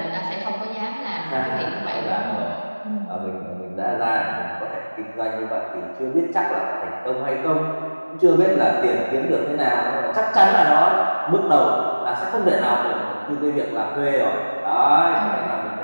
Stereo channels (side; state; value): both; inverted; correlation -1.00